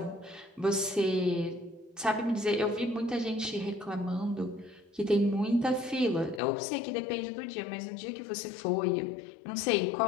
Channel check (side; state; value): right; drops out; at 6.4 s